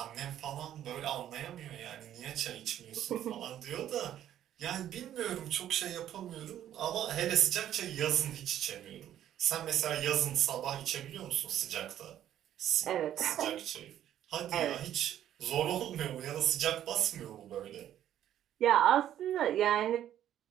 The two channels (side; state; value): left; quieter; 11.3 dB